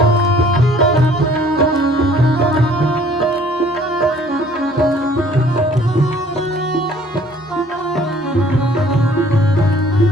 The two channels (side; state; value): both; normal; correlation 0.56